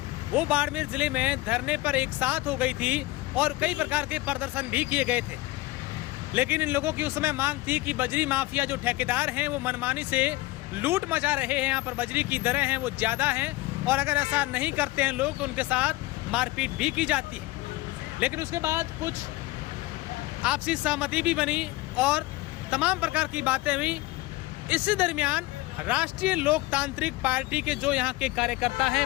वो बाड़मेर जिले में धरने पर एक साथ हो गई थी और कई प्रकार के प्रदर्शन भी किए गए थे। लेकिन इन लोगों की उस समय मांग थी कि बजरी माफिया जो ठेकेदार हैं वो मनमानी से लूट मचा रहे हैं, यहाँ पर बजरी की दरें हैं वो ज़्यादा हैं और अगर ऐसा नहीं करते हैं लोग तो उनके साथ मारपीट भी की जाती है। लेकिन उसके बाद कुछ आपसी सहमति भी बनी और तमाम प्रकार की बातें हुई। इसी दरमियान राष्ट्रीय लोकतांत्रिक पार्टी के जो यहाँ के कार्यकर्ता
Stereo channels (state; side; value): quieter; right; 19.7 dB